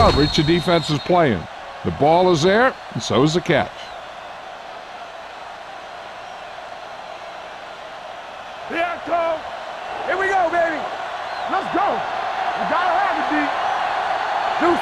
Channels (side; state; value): both; identical; correlation 1.00